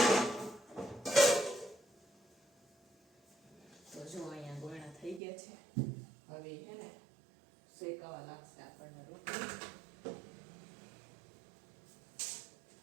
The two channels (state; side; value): drops out; left; at 5.2 s